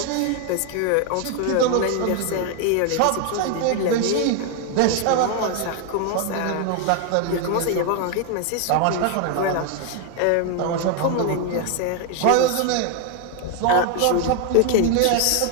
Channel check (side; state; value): both; different; correlation 0.01